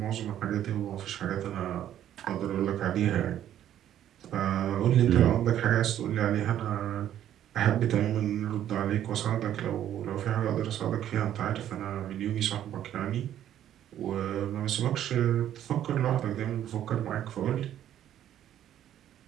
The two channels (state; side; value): quieter; left; 11.2 dB